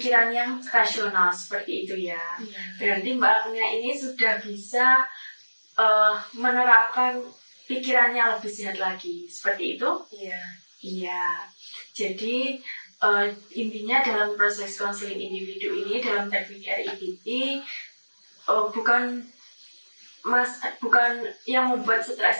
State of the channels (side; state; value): both; inverted; correlation -1.00